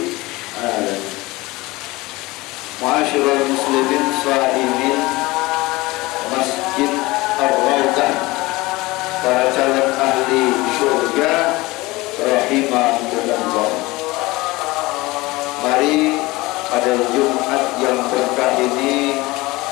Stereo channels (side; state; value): right; quieter; 21.2 dB